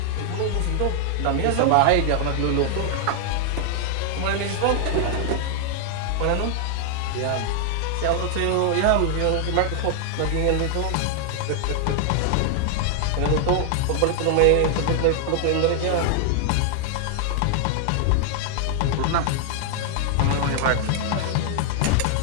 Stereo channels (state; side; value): different; both; correlation 0.00